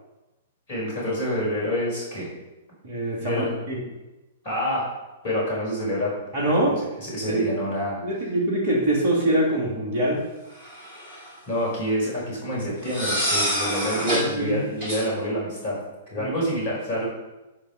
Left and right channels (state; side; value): inverted; both; correlation -0.32